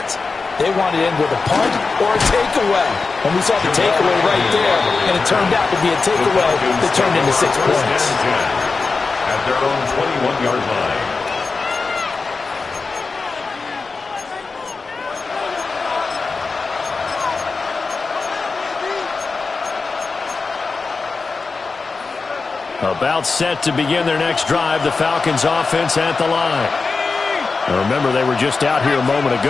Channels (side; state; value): right; quieter; 4.3 dB